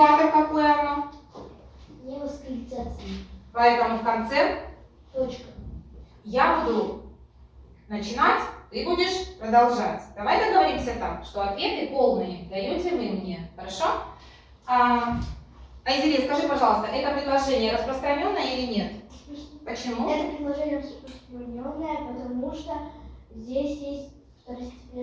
какое оно? Не восклицательное. Поэтому в конце Точка. я буду начинать, ты будешь продолжать. Давай договоримся так, что ответы полные даете вы мне. Хорошо? Айзере, скажи, пожалуйста, это предложение распространенное или нет? Почему? Это предложение распространенное, потому что здесь есть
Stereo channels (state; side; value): identical; both; correlation 1.00